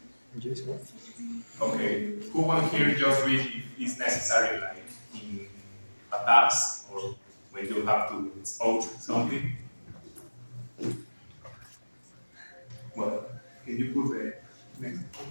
Okay. Who one here just read if it's necessary, like in a task or when you have to spoke something? Well, can you put the next?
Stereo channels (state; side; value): inverted; both; correlation -1.00